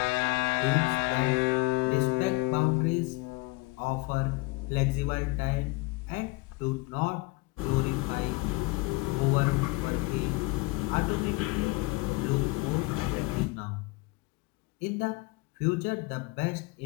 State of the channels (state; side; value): quieter; right; 24.7 dB